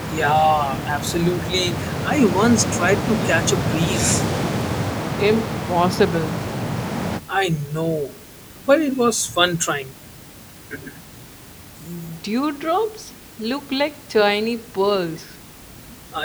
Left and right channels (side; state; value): both; identical; correlation 1.00